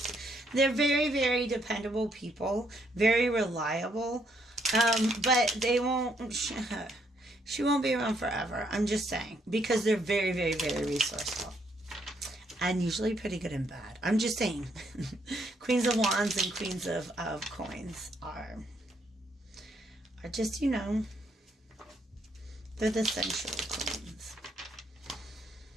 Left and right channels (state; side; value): normal; both; correlation 0.72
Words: They're very, very dependable people, very reliable, but they won't, she won't be around forever. I'm just saying, because they're very, very, very resourceful. And usually pretty good and bad. I'm just saying. Queens of Wands and Queens of Coins are just, you know, they're the sensual queens.